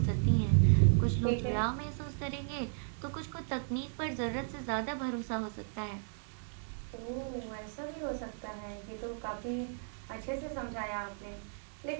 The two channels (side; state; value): left; silent; digital silence